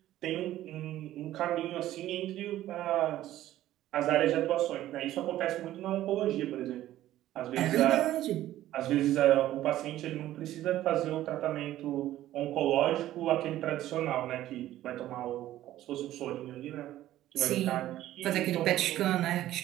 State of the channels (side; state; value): left; quieter; 13.9 dB